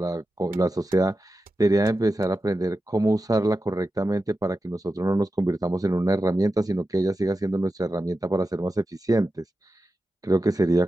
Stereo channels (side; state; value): both; normal; correlation 0.91